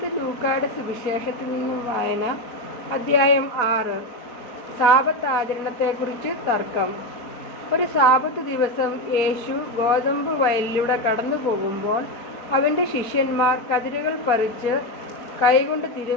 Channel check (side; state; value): right; late; 4.1 ms